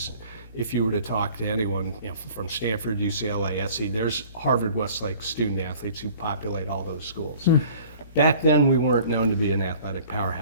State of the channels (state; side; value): inverted; both; correlation -0.50